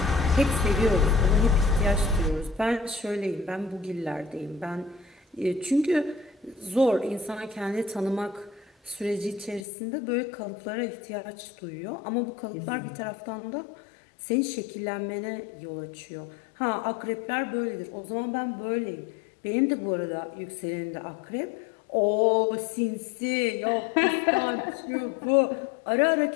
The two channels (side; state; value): right; drops out; at 9.6 s